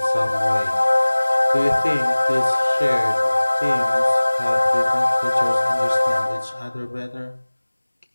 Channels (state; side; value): inverted; both; correlation -1.00